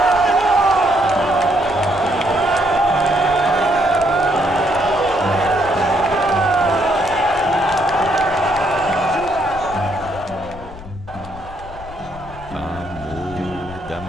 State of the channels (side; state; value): left; noise; rumble, 16 dB below the sound